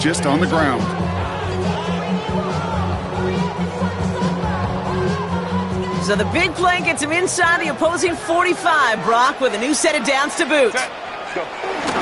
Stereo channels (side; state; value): both; identical; correlation 1.00